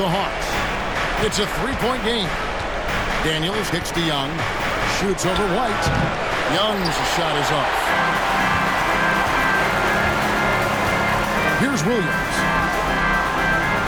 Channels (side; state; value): both; identical; correlation 1.00